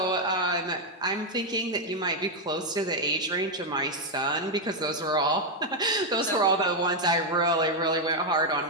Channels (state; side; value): normal; both; correlation 0.02